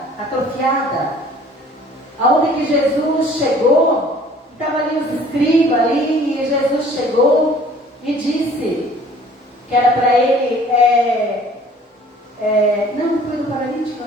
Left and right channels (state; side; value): normal; both; correlation 0.52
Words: atrofiada. Aonde que Jesus chegou, estava ali os escribas ali, e Jesus chegou e disse que era para ele, não foi do paralítico,